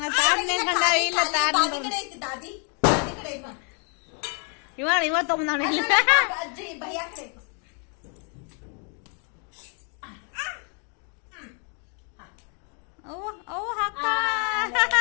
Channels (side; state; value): right; quieter; 39.6 dB